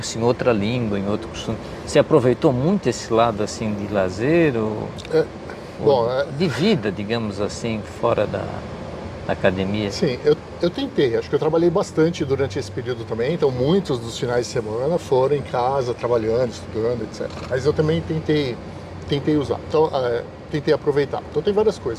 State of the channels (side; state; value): both; identical; correlation 1.00